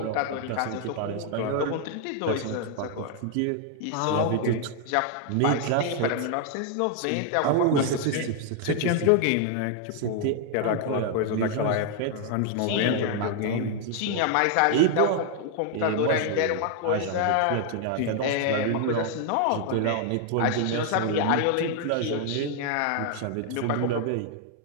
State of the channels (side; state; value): both; different; correlation 0.00